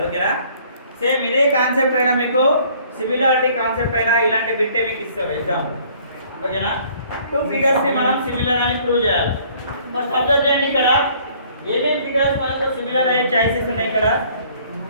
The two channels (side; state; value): both; inverted; correlation -0.58